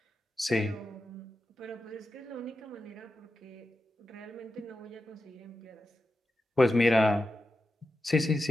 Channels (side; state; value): both; normal; correlation 0.90